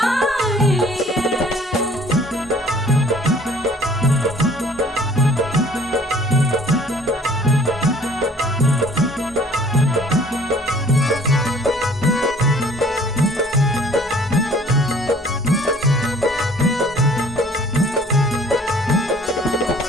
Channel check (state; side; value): normal; both; correlation 0.53